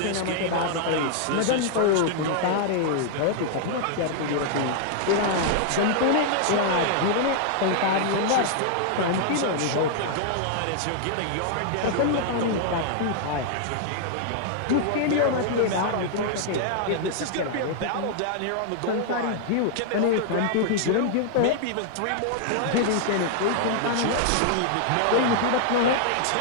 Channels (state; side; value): different; both; correlation -0.01